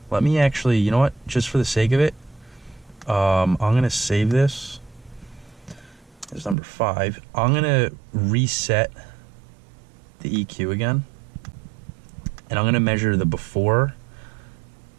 Let me actually, you know what? Just for the sake of it, I'm gonna save this as number 5. I'm gonna reset the EQ again, and I'm gonna measure the before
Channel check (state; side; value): drops out; left; at 6.6 s